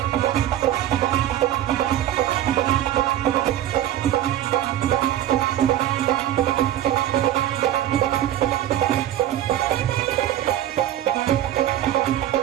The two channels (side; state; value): left; quieter; 12.4 dB